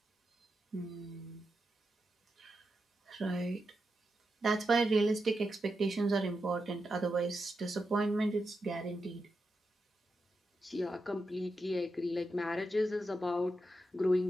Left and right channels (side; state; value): both; normal; correlation 0.87